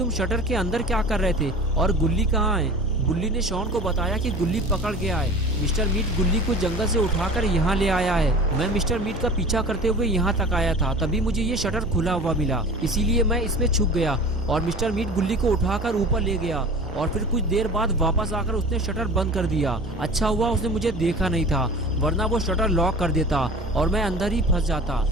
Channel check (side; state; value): both; normal; correlation 0.39